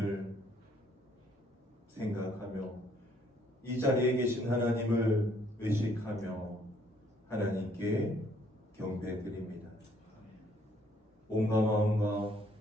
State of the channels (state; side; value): normal; both; correlation 0.65